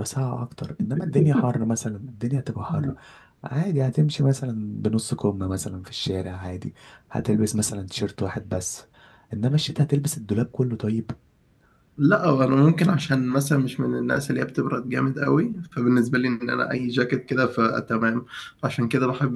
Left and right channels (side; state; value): both; identical; correlation 1.00